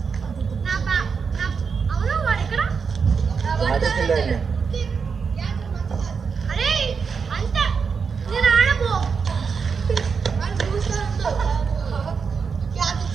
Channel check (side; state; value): left; quieter; 5.7 dB